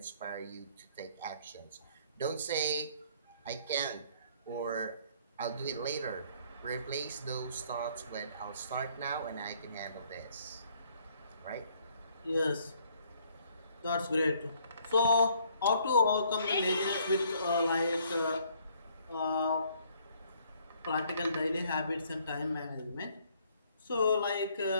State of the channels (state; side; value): inverted; both; correlation -0.64